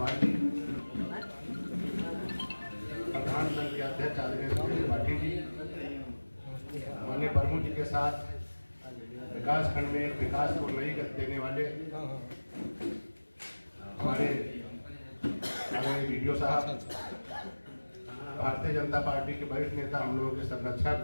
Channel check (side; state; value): both; inverted; correlation -1.00